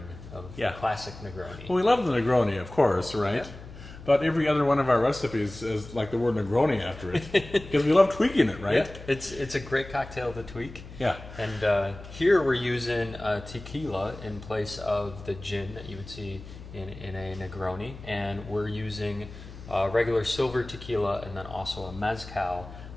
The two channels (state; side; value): noise; left; hum, 15 dB below the sound